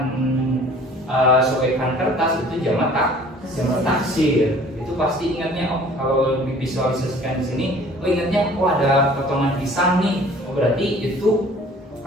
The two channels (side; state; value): both; normal; correlation 0.50